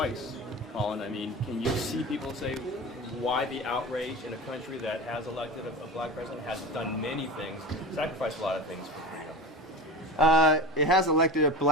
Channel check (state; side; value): normal; both; correlation 0.30